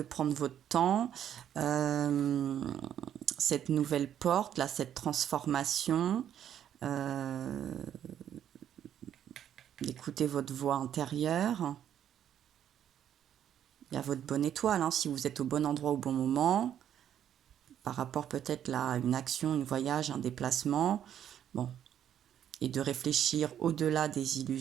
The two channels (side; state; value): left; quieter; 10.0 dB